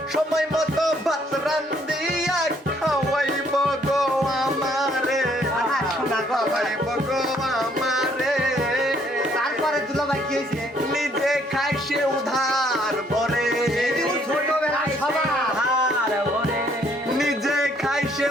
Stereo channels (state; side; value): normal; both; correlation 0.65